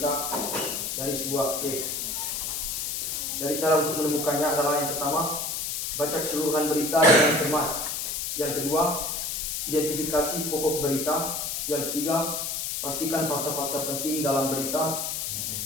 dari sebuah teks? Dari cara untuk menemukannya adalah yang pertama, baca keseluruhan berita dengan cermat. Yang kedua, identifikasi pokok berita. Yang ketiga, pastikan fakta-fakta penting dalam berita.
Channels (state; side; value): noise; left; hiss, 2 dB below the sound